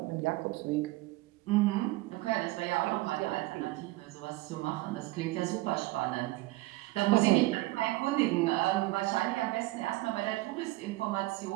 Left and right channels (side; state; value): left; quieter; 19.7 dB